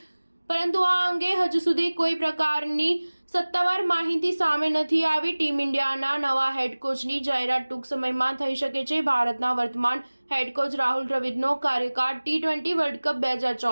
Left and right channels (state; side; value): inverted; both; correlation -1.00